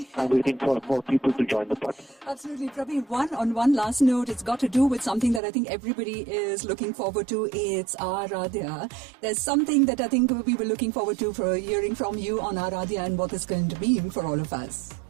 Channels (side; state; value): left; drops out; at 5.4 s